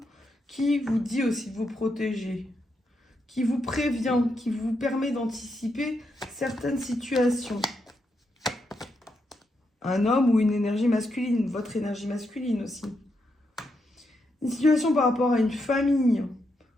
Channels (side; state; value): both; normal; correlation 0.82